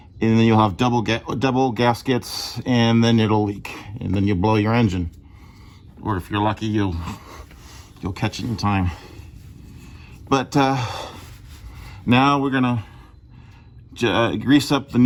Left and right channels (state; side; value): identical; both; correlation 1.00